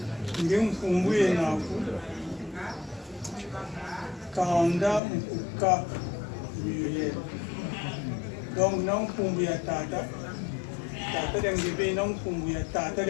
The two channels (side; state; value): right; drops out; at 5.0 s